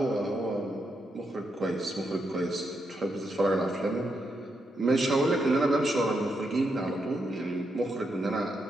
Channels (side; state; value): both; normal; correlation 0.82